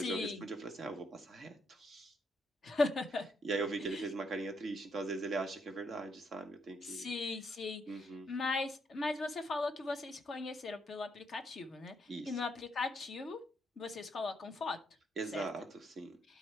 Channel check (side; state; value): both; normal; correlation 0.75